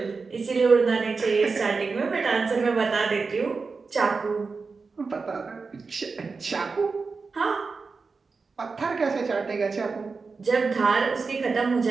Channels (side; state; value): left; quieter; 4.5 dB